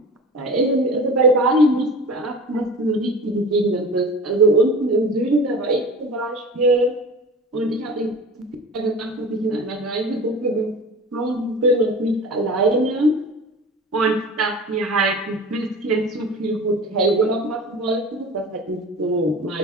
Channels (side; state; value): both; normal; correlation 0.36